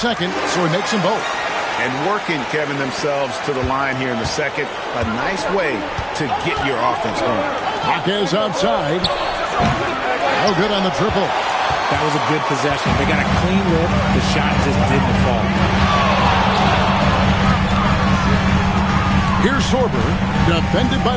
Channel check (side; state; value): both; identical; correlation 1.00